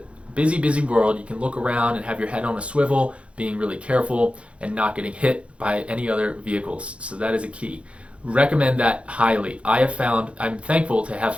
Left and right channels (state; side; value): late; left; 0.061 ms